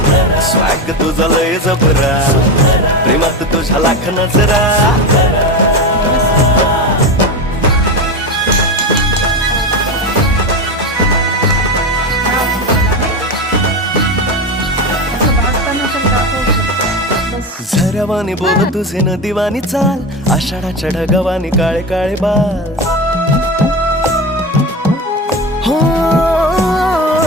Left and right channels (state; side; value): normal; both; correlation 0.20